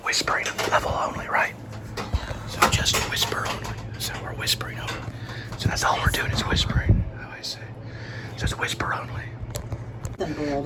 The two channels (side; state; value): both; identical; correlation 1.00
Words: whispering level only, right? So just whisper only. So we're whispering only. So that's all we're doing is whispering. I always say. So it's whisper only.